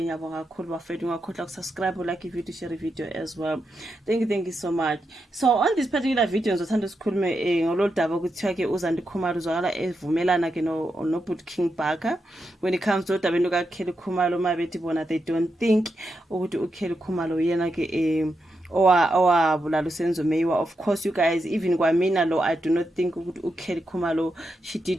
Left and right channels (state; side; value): normal; both; correlation 0.85